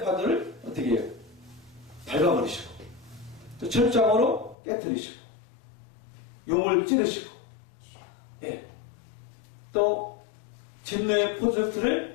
파도를 어떻게 해요? 밟아버리시고, 또 철장으로 깨뜨리시고, 용을 찌르시고, 예. 또 진노의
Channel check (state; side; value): drops out; right; at 4.5 s